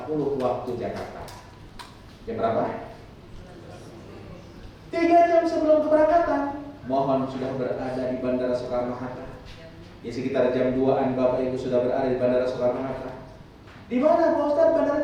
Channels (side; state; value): both; identical; correlation 1.00